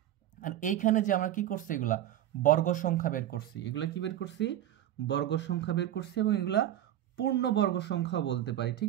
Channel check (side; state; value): left; quieter; 12.2 dB